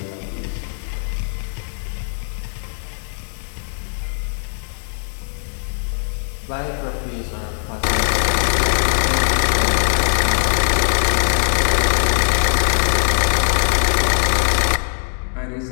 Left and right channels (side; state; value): right; silent; digital silence